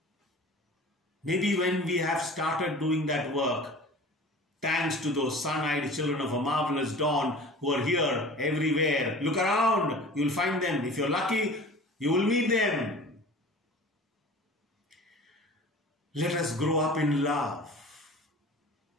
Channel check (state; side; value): normal; both; correlation 0.41